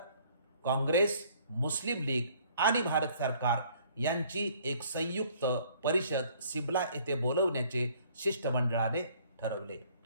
काँग्रेस, मुस्लिम लीग आणि भारत सरकार यांची एक संयुक्त परिषद सिमला येथे बोलवण्याचे शिष्टमंडळाने ठरवले.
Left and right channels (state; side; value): inverted; both; correlation -0.59